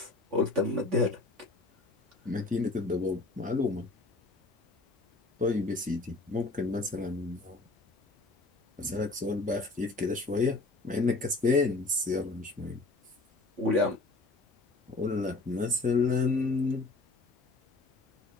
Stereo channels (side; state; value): right; quieter; 3.3 dB